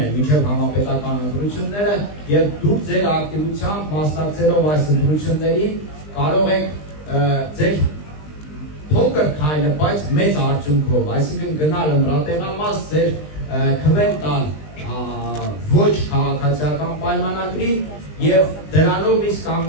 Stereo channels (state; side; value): late; right; 20 ms